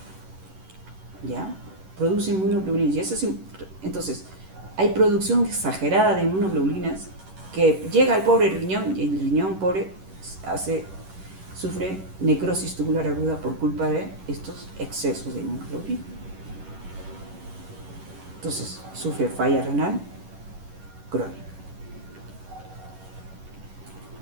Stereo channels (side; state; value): left; late; 11 ms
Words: ¿Ya? Produce inmunoglobulinas. Y eso es, entonces, hay producción exagerada de inmunoglobulinas que llega al pobre riñón y el riñón pobre sufre necrosis tubular aguda por culpa de estos excesos de inmunoglobulina. Entonces, sufre falla renal crónica.